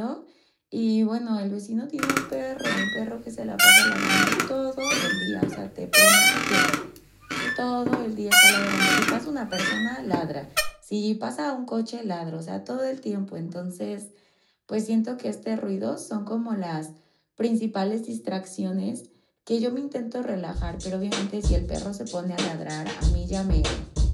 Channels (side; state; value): both; identical; correlation 1.00